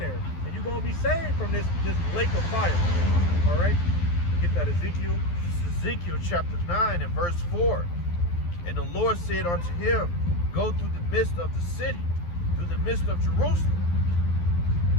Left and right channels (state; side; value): late; right; 12 ms